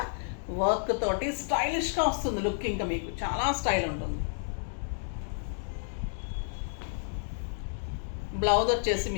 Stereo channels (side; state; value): right; silent; digital silence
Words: వర్క్ తోటి స్టైలిష్గా వస్తుంది లుక్. ఇంకా మీకు చాలా స్టైల్ ఉంటుంది. బ్లౌజ్ వచ్చేసి